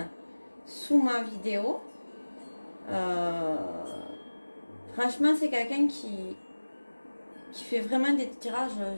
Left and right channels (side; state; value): both; inverted; correlation -1.00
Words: sous ma vidéo. Euh, Franchement, c'est quelqu'un qui fait vraiment des tirages